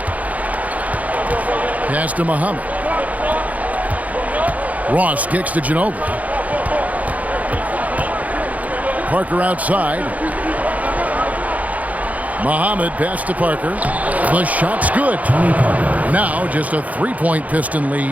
Pass to Muhammad. Ross kicks to Ginobili. Parker outside. Muhammad pass to Parker. The shot's good. Now just a 3-point Piston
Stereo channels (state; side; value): late; left; 0.073 ms